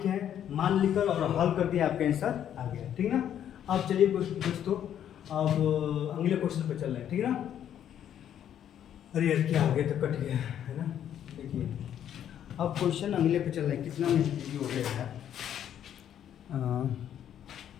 हैं, मान लिखकर और हल कर दिया, आपका आंसर आ गया, ठीक ना। अब चलिए दोस्तों, अब अगले क्वेश्चन पर चल रहे हैं, ठीक है ना। अरे यार क्या हो गया, तो कट गया है ना, देखिए अब क्वेश्चन अगले पे चल रहे हैं, कितना मिनट वीडियो हो गया है।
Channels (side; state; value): right; quieter; 10.0 dB